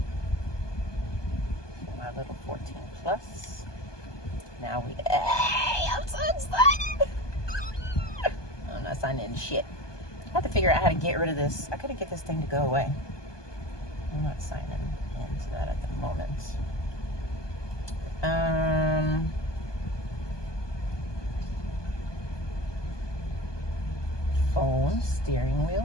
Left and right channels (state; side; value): late; right; 1.2 ms